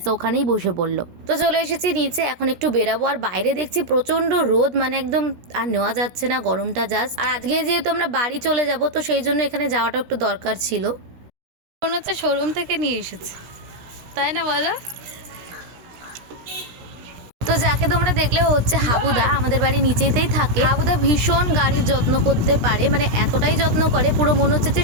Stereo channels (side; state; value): left; late; 16 ms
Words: ওখানেই বসে পড়লো। তো চলে এসেছি নিচে, এখন একটু বেরাবো। আর বাইরে দেখছি প্রচন্ড রোদ, মানে একদম আর নেওয়া যাচ্ছে না গরমটা জাস্ট। আর আজকে যেহেতু আমরা বাড়ি চলে যাব, তো সেই জন্য এখানে যাওয়াটা একটু দরকার ছিল। মনে হচ্ছে শোরুম থেকে নিয়ে এসেছে, তাই না বলো? তো যাকে তোমরা দেখলে হচ্ছে হাবুদা, আমাদের বাড়ি নিচেতেই থাকে। হাবুদা ভীষণ গাড়ির যত্ন করতে পারে, মানে এতটাই যত্ন করে পুরো মনে হচ্ছে যে